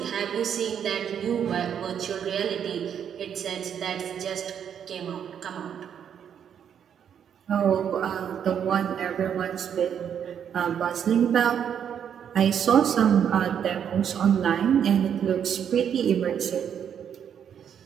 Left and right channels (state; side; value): quieter; left; 8.5 dB